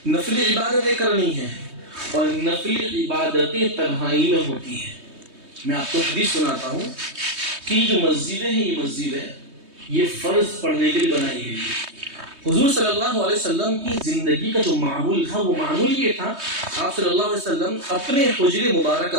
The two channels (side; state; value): left; late; 3.2 ms